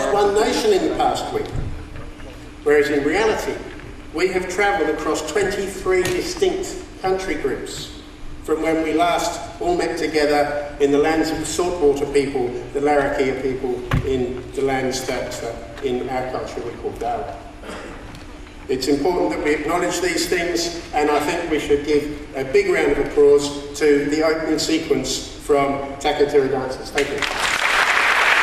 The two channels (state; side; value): identical; both; correlation 1.00